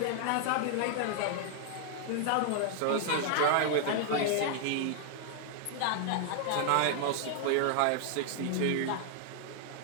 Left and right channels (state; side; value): different; both; correlation -0.01